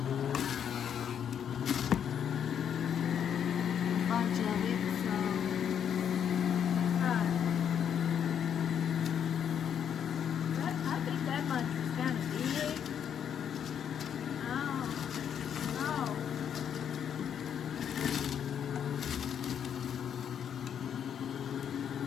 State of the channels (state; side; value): quieter; right; 8.5 dB